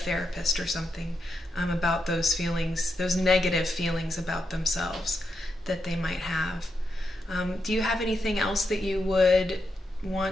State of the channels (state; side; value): normal; both; correlation 0.84